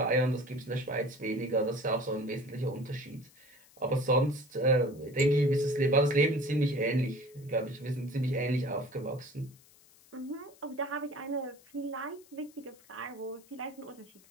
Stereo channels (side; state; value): left; noise; hiss, 27 dB below the sound